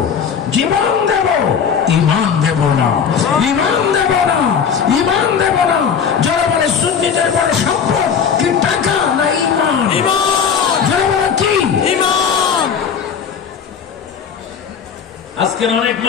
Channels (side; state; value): right; quieter; 7.1 dB